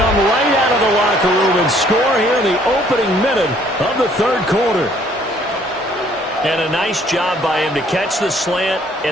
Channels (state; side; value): normal; both; correlation 0.61